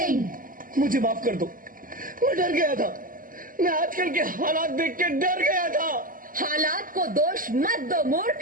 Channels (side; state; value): left; late; 0.40 ms